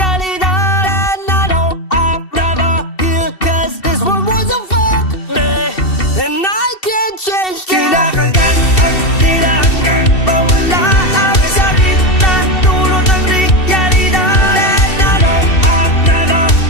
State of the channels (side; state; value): right; late; 2.7 ms